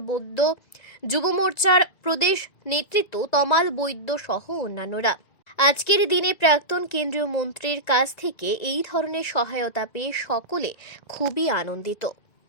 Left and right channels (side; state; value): right; late; 1.9 ms